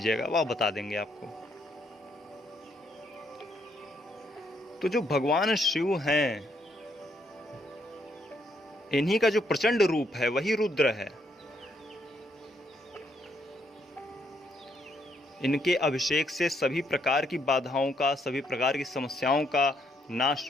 वह बता देंगे आपको। तो जो भगवान शिव हैं, इन्हीं का जो प्रचंड रूप है वही रुद्र है। इनके अभिषेक से सभी प्रकार की बाधाओं का, सभी प्रकार की समस्याओं का नाश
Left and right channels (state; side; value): normal; both; correlation 0.73